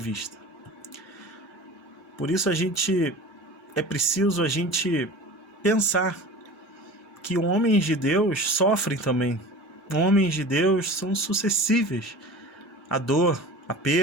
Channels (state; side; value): normal; both; correlation 0.37